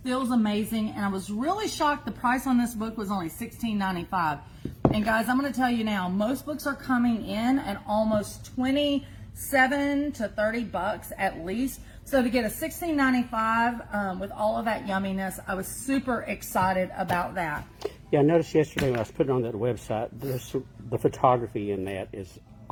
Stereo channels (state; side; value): identical; both; correlation 1.00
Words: feels amazing. And I was really shocked the price on this book was only $16.95. And guys, I'm going to tell you now, most books are coming in at almost 27 to 30 bucks at least. So to get a $16.95 with all of that yumminess, I was super excited about that. Yeah, I noticed yesterday when I was putting on that website, the photography in that is